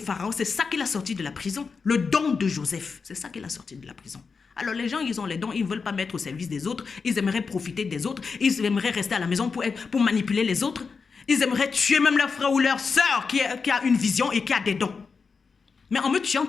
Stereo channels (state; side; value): quieter; right; 5.1 dB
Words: Pharaon, c'est ça qu'il a sorti de la prison. Le don de Joseph, c'est ça qu'il a sorti de la prison. Alors les gens, ils ont les dons, ils ne veulent pas mettre au service des autres. Ils aimeraient profiter des autres. Ils aimeraient rester à la maison pour manipuler les autres. Ils aimeraient tuer même leur frère ou leur soeur qui a une vision et qui a des dons. Mais en me tuant,